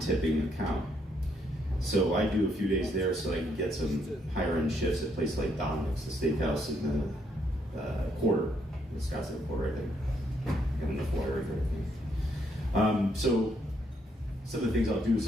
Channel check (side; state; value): both; normal; correlation 0.73